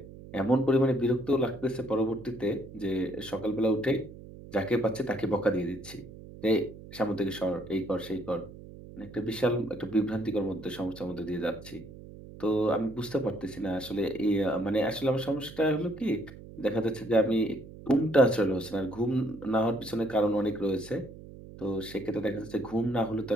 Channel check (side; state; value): right; noise; hum, 16 dB below the sound